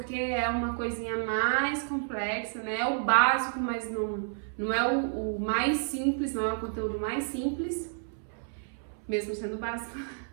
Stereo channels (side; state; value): left; silent; 58 dB below the other